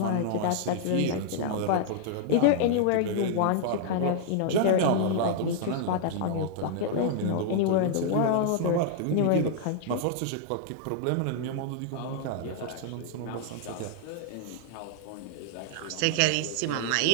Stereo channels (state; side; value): different; both; correlation -0.01